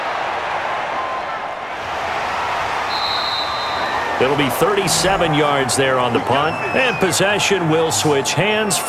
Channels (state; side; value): identical; both; correlation 1.00